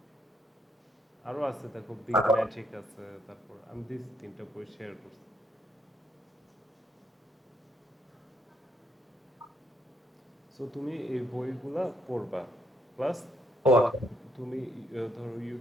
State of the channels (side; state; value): both; normal; correlation 0.73